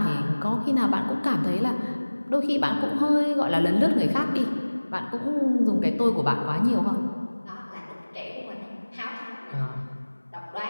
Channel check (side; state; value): both; inverted; correlation -1.00